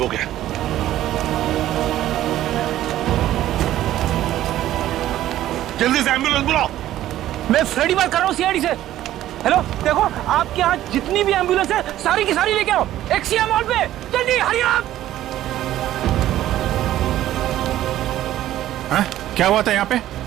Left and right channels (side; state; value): left; quieter; 13.4 dB